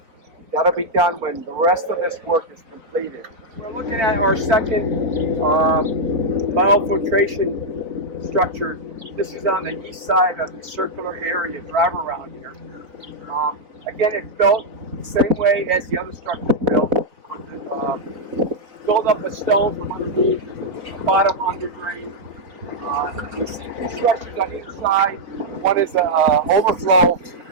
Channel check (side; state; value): left; late; 4.4 ms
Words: That'll be done when the rest of this work is completed. We're looking at our second biofiltration structure. This is on the east side of the circular area, drive around here. Again, it's built the same way as the other structure is built, with the build up of stone from underneath, the bottom under drain. You see 2 structures on either side. One is an overflow